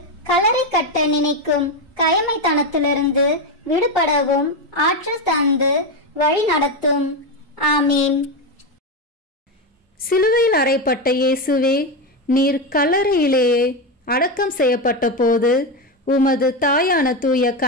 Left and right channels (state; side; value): normal; both; correlation 0.12